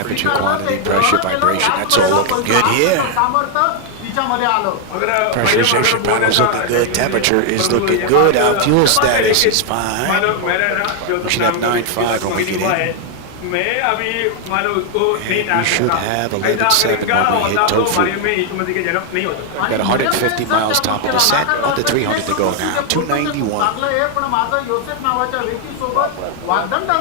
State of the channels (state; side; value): different; both; correlation 0.00